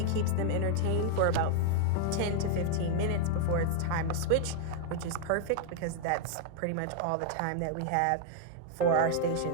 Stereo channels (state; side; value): different; both; correlation -0.01